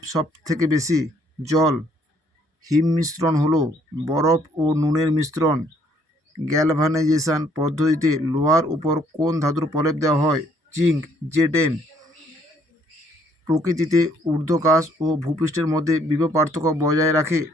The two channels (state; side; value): normal; both; correlation 0.65